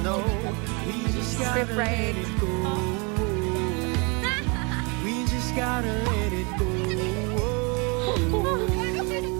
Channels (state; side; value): quieter; left; 31.4 dB